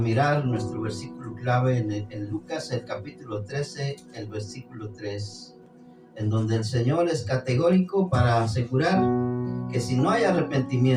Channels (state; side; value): identical; both; correlation 1.00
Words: nuestro versículo clave en Lucas, el capítulo 13, el versículo 3, en donde el Señor es categórico para asegurar que si no hay